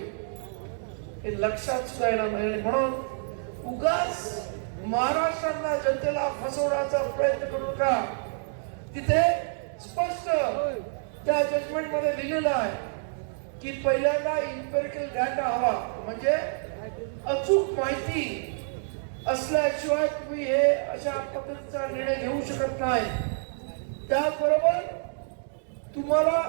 हे लक्षात सुद्धा येणार नाही. म्हणून उगाच महाराष्ट्रातल्या जनतेला फसवण्याचा प्रयत्न करू नका. तिथे स्पष्ट त्या जजमेंट मध्ये लिहिलेलं आहे की पहिल्यांदा इम्पेरिकल डाटा हवा, म्हणजे अचूक माहिती असल्याशिवाय तुम्ही हे अशा पद्धतीचा निर्णय घेऊ शकत नाही. त्याचबरोबर तुम्हाला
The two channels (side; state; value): left; silent; digital silence